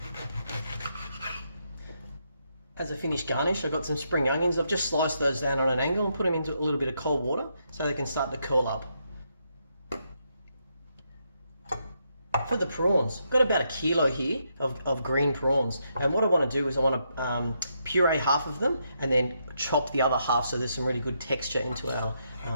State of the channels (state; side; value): inverted; both; correlation -0.79